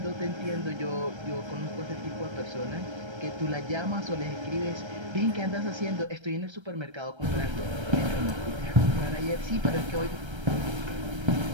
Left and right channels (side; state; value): left; late; 1.3 ms